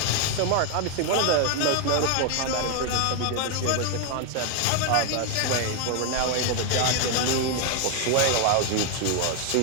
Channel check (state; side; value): different; both; correlation 0.01